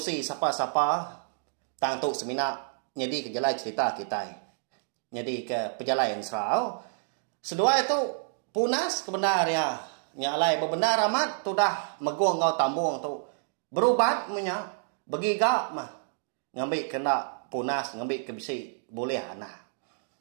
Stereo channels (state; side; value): silent; left; digital silence